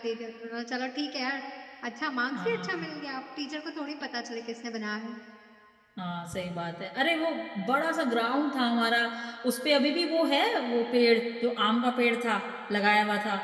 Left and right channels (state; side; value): identical; both; correlation 1.00